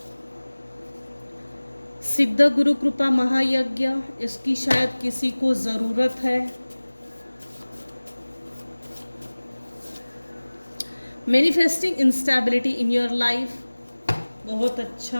सिद्ध गुरु कृपा महायज्ञ, इसकी शायद किसी को ज़रूरत है। Manifesting instability in your life, बहुत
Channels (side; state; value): both; inverted; correlation -1.00